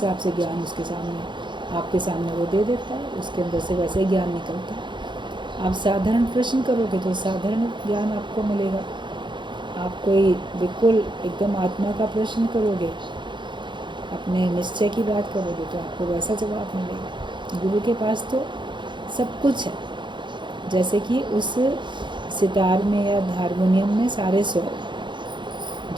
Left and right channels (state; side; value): late; left; 0.23 ms